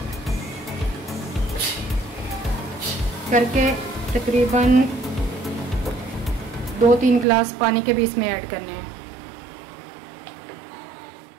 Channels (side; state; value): left; drops out; at 7.2 s